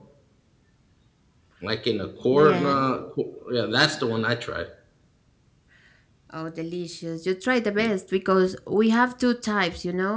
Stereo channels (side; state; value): both; identical; correlation 1.00